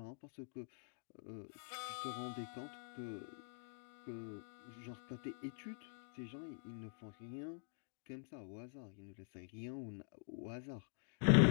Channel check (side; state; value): right; silent; digital silence